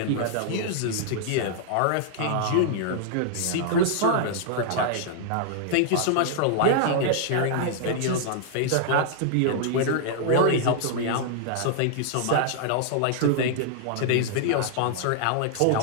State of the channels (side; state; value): both; different; correlation -0.01